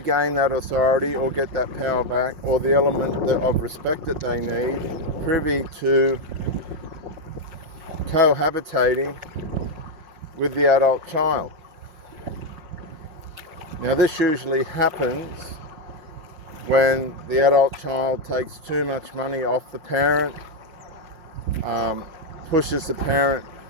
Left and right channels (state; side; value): late; left; 5.6 ms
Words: that authority or get that power back, or the element of respect that they need, privy to cohabitating with the adult child. Now, this usually happens when the adult child takes too much money off the parent, pushes the parent